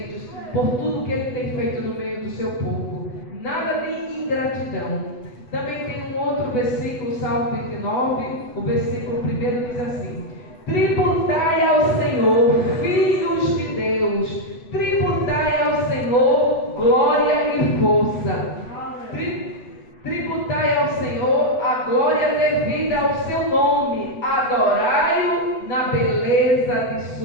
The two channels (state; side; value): late; right; 8.1 ms